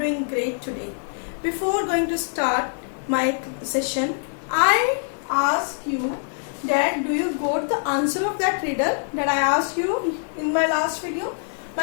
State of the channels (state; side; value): silent; right; 63 dB below the other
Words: great today. Before going to start my session, I ask you that do you got the answer of that riddle that I asked you in my last video?